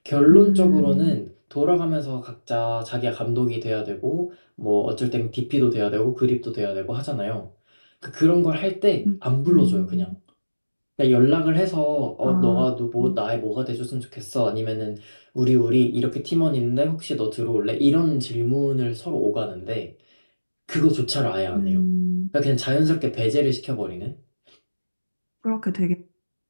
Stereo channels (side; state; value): both; inverted; correlation -1.00